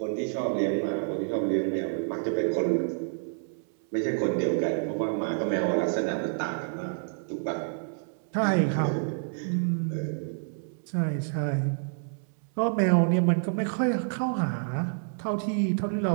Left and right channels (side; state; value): left; silent; 59 dB below the other